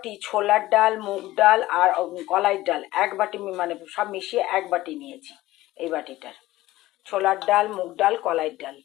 ছোলার ডাল, মুগ ডাল আর কলাইয়ের ডাল এক বাটি, মানে সব মিশিয়ে এক বাটি নিয়েছি। এই বাটিটার ছোলার ডাল, মুগ ডাল, কলাইয়ের ডাল।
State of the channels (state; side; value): quieter; right; 16.9 dB